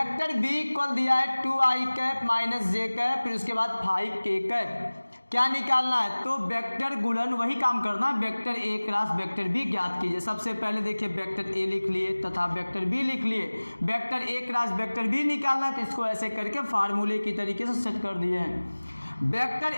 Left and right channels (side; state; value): both; inverted; correlation -1.00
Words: बी इक्वल दिया है 2 आई कैप -j कैप, फिर उसके बाद 5 के कैप, क्या निकालना है, तो वेक्टर गुणन वही काम करना, vector A cross vector B ज्ञात कीजिए। सबसे पहले देखिए वेक्टर ए लिख लिए तथा वेक्टर बी लिख लिए, vector A cross vector B निकालना है तो इसको ऐसे करके फार्मूले की तरीके से सेट कर दिए हैं। वेक्टर